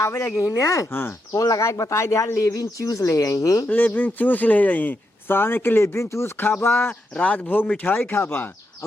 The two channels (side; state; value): both; normal; correlation 0.83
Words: लगी ने हाँ फोन लगा के बता दे लेविन चूस ले आई लेबिन चूस ले जाई साने के लेबिन चूस खाबा, राजभोग मिठाई खाबा